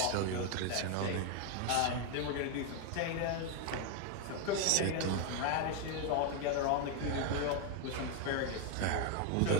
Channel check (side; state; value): both; different; correlation 0.01